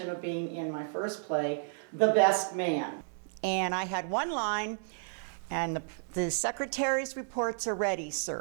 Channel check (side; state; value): left; silent; 56 dB below the other